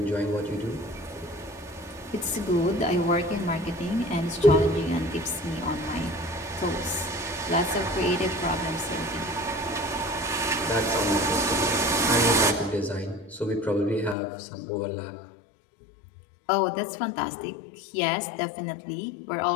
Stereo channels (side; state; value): right; drops out; at 14.2 s